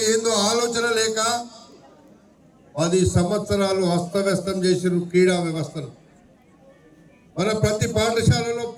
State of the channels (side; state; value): both; identical; correlation 1.00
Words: ఏందో ఆలోచన లేక 10 సంవత్సరాలు అస్తవ్యస్తం చేసిన క్రీడా వ్యవస్థను. మన ప్రతి పాఠశాలలో